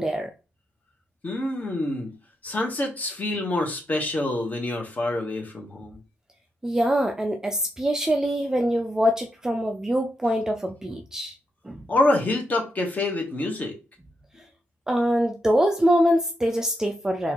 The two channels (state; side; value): normal; both; correlation 0.84